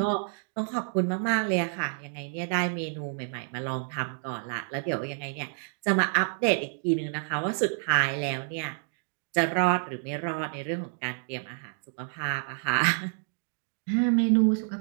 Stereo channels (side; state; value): left; silent; 59 dB below the other